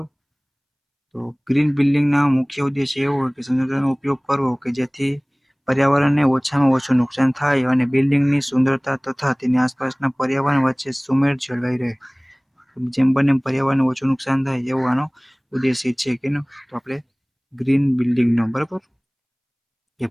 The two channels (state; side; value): identical; both; correlation 1.00